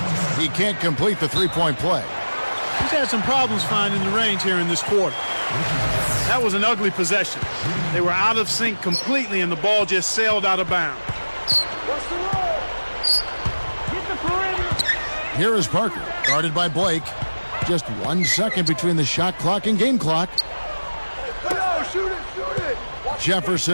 He can't complete the three-point play. He's had some problems finding the range here in this quarter. That was an ugly possession. They were out of sync completely, and the ball just sailed out of bounds. Here is Parker, guarded by Blake. Just 1 second between the shot clock and game clock.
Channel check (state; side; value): inverted; both; correlation -1.00